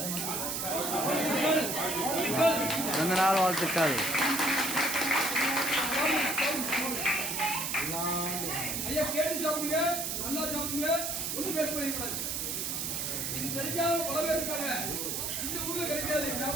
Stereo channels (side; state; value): right; noise; hiss, 2 dB below the sound